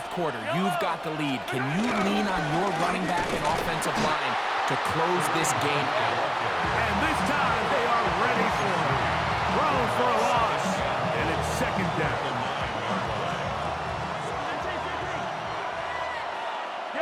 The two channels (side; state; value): both; identical; correlation 1.00